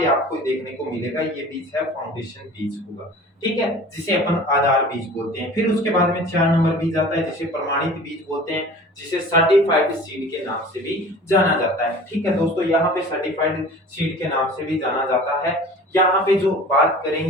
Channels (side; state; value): both; normal; correlation 0.42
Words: आपको देखने को मिलेगा, ये बीज है फाउंडेशन बीज होगा। ठीक है, जिसे अपन आधार बीज बोलते हैं। फिर उसके बाद में 4 नंबर बीज आता है, जिसे प्रमाणित बीज बोलते हैं, जिसे सर्टिफाइड सीड के नाम से भी जाना जाता है। ठीक है दोस्तों, यहाँ पे सर्टिफाइड सीड के नाम से भी जाना जाता है। यहाँ पे जो बात